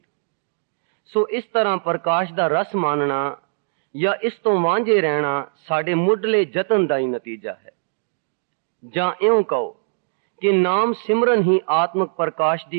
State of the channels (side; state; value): left; silent; digital silence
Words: ਸੋ ਇਸ ਤਰ੍ਹਾਂ ਪ੍ਰਕਾਸ਼ ਦਾ ਰਸ ਮਾਨਣਾ ਜਾਂ ਇਸ ਤੋਂ ਵਾਂਝੇ ਰਹਿਣਾ ਸਾਡੇ ਮੁੱਢਲੇ ਯਤਨ ਦਾ ਹੀ ਨਤੀਜਾ ਹੈ। ਜਾਂ ਇਉਂ ਕਹੋ ਕਿ ਨਾਮ ਸਿਮਰਨ ਹੀ ਆਤਮਕ ਪ੍ਰਕਾਸ਼